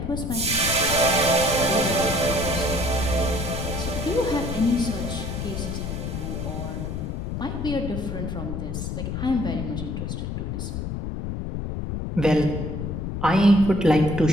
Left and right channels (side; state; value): left; noise; rumble, 4 dB below the sound